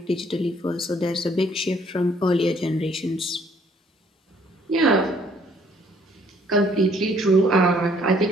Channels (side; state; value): both; normal; correlation 0.63